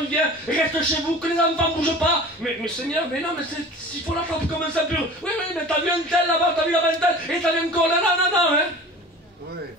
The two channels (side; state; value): both; normal; correlation 0.40